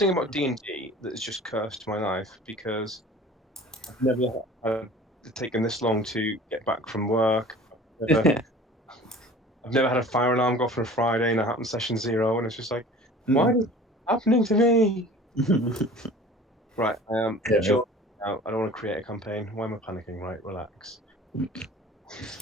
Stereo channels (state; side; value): normal; both; correlation 0.44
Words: about D&D that has just cursed my life because I've never had taken this long to get back from work. I've never had a fire alarm go off on a Friday and it happened session 0, and it's just like, why is it happening to me? Right, I am just out. I don't want to create a campaign. Why am I panicking? Right, relax.